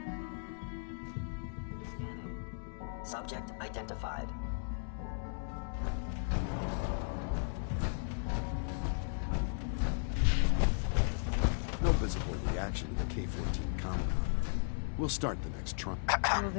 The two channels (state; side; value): silent; right; digital silence